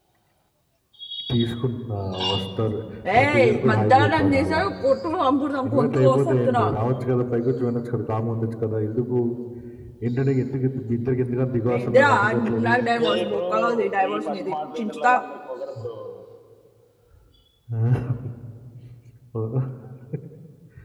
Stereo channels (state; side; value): identical; both; correlation 1.00